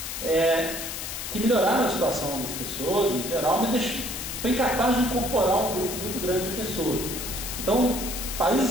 que melhoraram a situação das pessoas em geral, mas foi incapaz de incorporar um grupo muito grande de pessoas. Então,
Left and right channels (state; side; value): noise; left; hiss, 6 dB below the sound